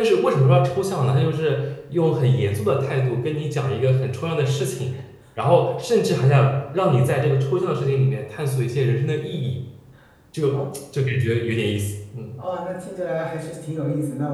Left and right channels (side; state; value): both; identical; correlation 1.00